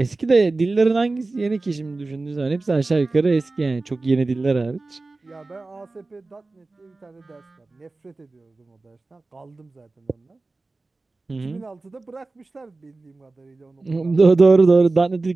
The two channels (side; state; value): left; quieter; 3.4 dB